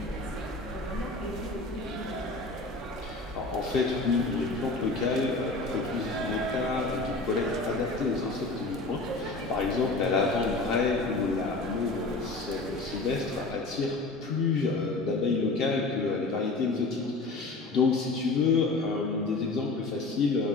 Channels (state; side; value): quieter; right; 3.3 dB